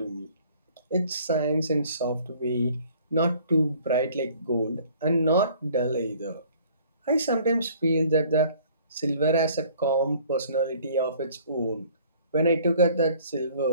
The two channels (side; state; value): both; inverted; correlation -0.55